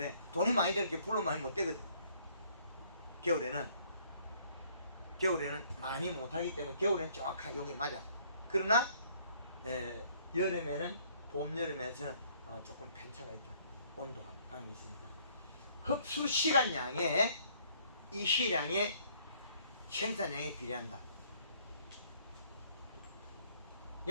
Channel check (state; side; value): inverted; both; correlation -0.61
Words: 돈이 많이 들게 불로 많이 못 되거든. 겨울에는 많이 못하기 때문에 겨울에는 정확하게 여기 맞아. 그러나 여름에는 봄, 여름에서는 조금 편차가 있다. 온도감이 있으니까. 흡수 시간량에 이 시량에 생산량에 비례한다.